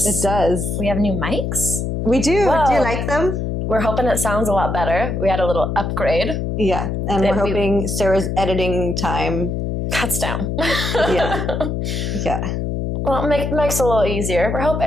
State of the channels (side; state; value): left; noise; hum, 2 dB below the sound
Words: It does. We have new mics. We do. Whoa. Do you like them? We're hoping it sounds a lot better. We had a little upgrade. Yeah. And we're hoping Sarah's editing time cuts down. Yeah. Yeah. Well, it makes it a little easier. We're